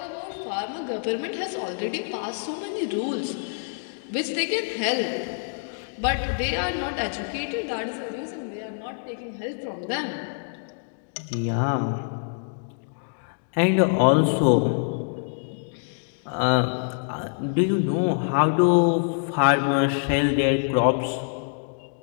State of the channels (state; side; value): silent; right; digital silence